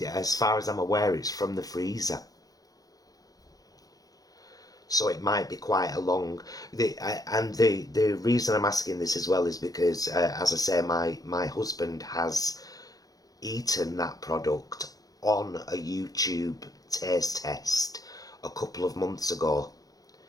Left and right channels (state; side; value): late; right; 0.18 ms